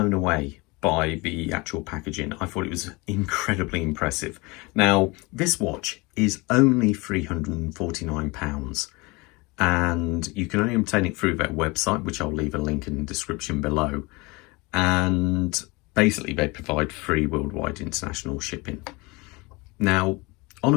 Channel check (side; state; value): right; quieter; 25.3 dB